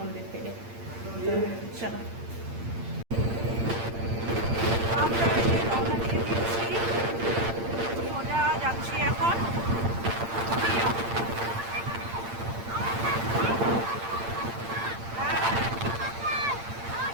থেকে। তো চলো, আমরা এই যে রওনা দিয়ে দিয়েছি, সোজা যাচ্ছি এখন দুধিয়া।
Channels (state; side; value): late; left; 8.8 ms